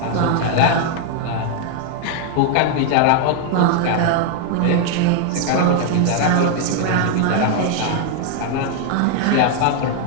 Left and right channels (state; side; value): different; both; correlation 0.00